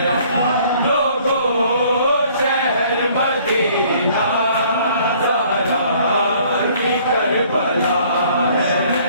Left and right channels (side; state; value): both; inverted; correlation -0.58